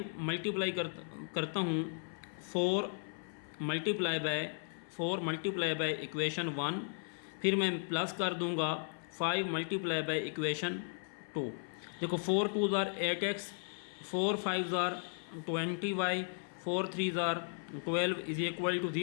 मल्टीप्लाई करता हूँ 4 मल्टीप्लाई बाय इक्वेशन 1, फिर मैं प्लस कर दूंगा 5 मल्टीप्लाई बाय इक्वेशन 2। देखो 4 2s are 8x, 4 5s are 20y, 4 3s are 12 is equal to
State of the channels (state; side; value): silent; right; 54 dB below the other